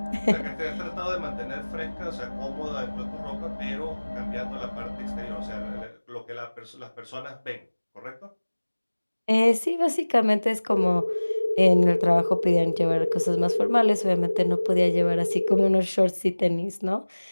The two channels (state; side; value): inverted; both; correlation -1.00